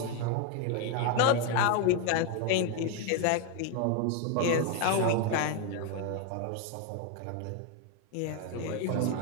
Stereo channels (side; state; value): both; different; correlation 0.01